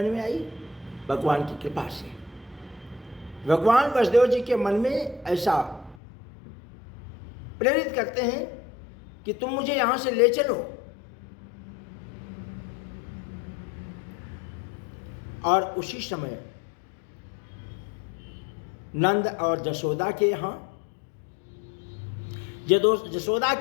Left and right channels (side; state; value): right; drops out; at 6.0 s